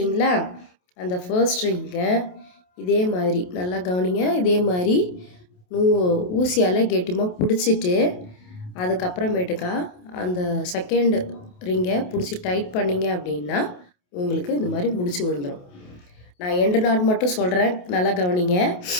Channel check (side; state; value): right; late; 28 ms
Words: அந்த ஃபர்ஸ்ட் ரிங்கை இதே மாதிரி நல்லா கவனிங்க. இதே மாதிரி ஊசியால் கெட்டியமாக பிடிச்சிட்டு அதுக்கப்புறமேட்டுக்கா அந்த செகண்ட் ரிங்கை பிடிச்சி டைட் பண்ணிங்க அப்படின்னா உங்களுக்கு இந்த மாதிரி முடிச்சு விழுந்துடும். நான் எண்டு நாட் மட்டும் சொல்கிறேன், நல்லா கவனிங்க.